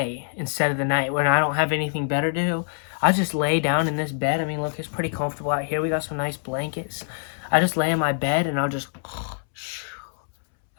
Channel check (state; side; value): silent; right; 62 dB below the other